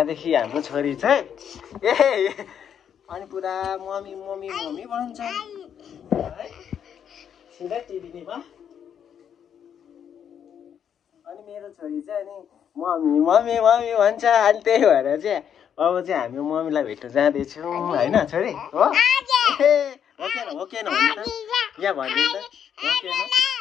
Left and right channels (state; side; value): quieter; right; 8.5 dB